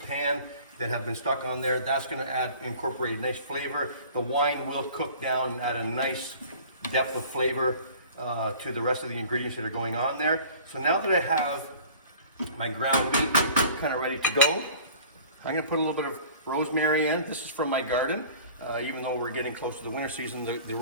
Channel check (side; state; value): both; inverted; correlation -0.46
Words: pan that have been stuck on there. That's going to incorporate a nice flavor. The wine will cook down and add a nice depth of flavor to the rest of the ingredients that are going on there. So now that I have my ground meat kind of ready to go, I'm going to put a little bit of rosemary in. This is from my garden. Even though we're getting close to the winter season, the